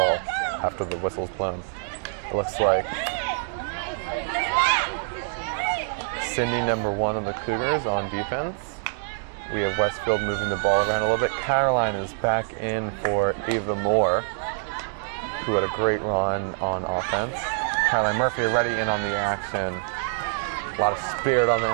after the whistle's blown. It looks like Sydney, number 1 of the Cougars, on defense. We have Westfield moving the ball around a little bit. Caroline is back in for Ava Moore, who had a great run on offense. Caroline Murphy already in on the action. A lot of spirit on the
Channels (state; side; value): silent; left; digital silence